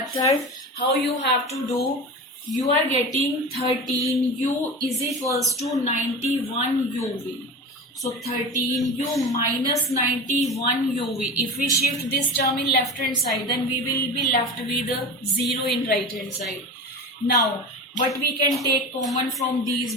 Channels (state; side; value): normal; both; correlation 0.29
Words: How you have to do? You are getting 13u is equals to 91 uv. So 13u minus 91 uv. If we shift this term in left hand side, then we will be left with a 0 in right hand side. Now what we can take common from these